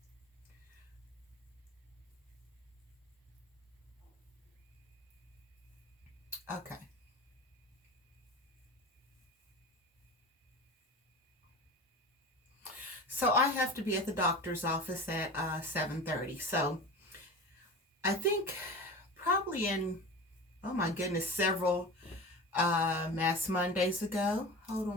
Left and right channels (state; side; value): normal; both; correlation 0.32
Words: Okay. So I have to be at the doctor's office at 7:30. So I think probably in, oh my goodness, several Mass Mondays ago. Hold